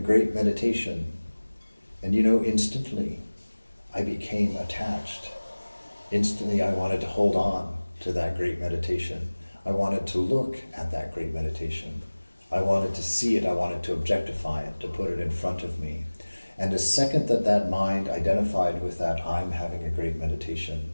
meditation. And instantly I became attached. Instantly I wanted to hold on to that great meditation. I wanted to look at that great meditation. I wanted to see it. I wanted to objectify it, to put it in front of me. And the second that mind identified with that I'm having a great meditation,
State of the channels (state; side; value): inverted; both; correlation -1.00